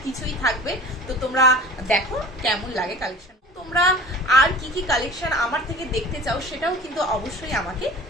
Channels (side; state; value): both; normal; correlation 0.40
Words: কিছুই থাকবে। তো তোমরা দেখো কেমন লাগে কালেকশন। তোমরা আর কি কি কালেকশন আমার থেকে দেখতে চাও সেটাও কিন্তু অবশ্যই আমাকে